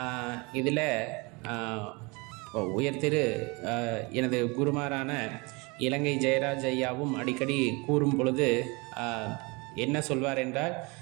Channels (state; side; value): quieter; left; 27.7 dB